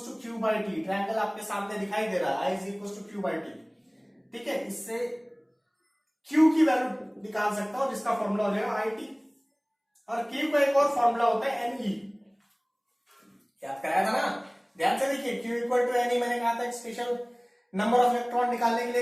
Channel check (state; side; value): identical; both; correlation 1.00